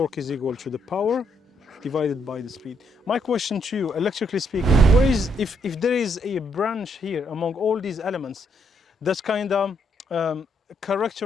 is equal to the power divided by the speed. My question to you, electrically speaking, where is, if there is a branch here among all these elements that kind of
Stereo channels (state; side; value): normal; both; correlation 0.74